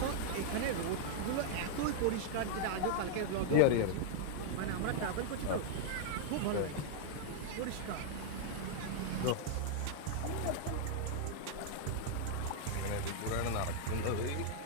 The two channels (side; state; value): both; different; correlation -0.01